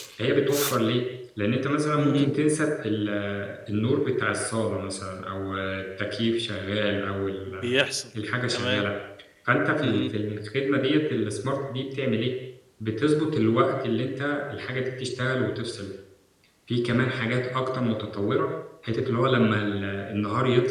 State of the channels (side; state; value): both; identical; correlation 1.00